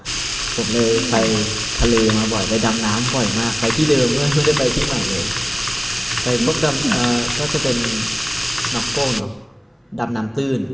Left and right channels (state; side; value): identical; both; correlation 1.00